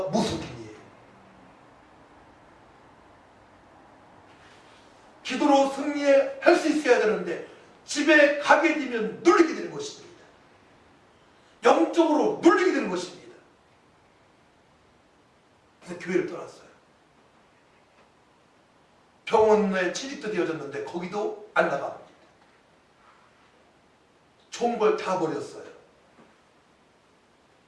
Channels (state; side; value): identical; both; correlation 1.00